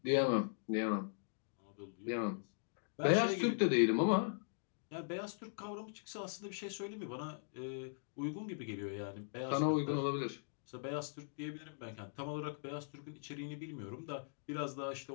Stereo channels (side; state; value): right; silent; digital silence